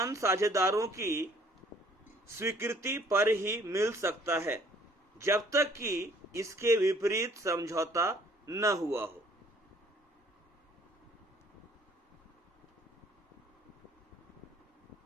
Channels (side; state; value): both; normal; correlation 0.58